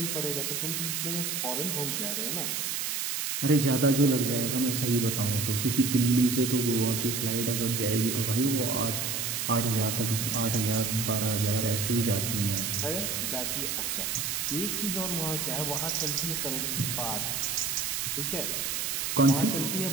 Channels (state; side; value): noise; right; hiss, 1 dB below the sound